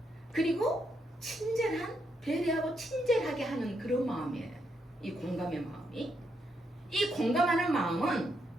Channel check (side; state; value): both; normal; correlation 0.79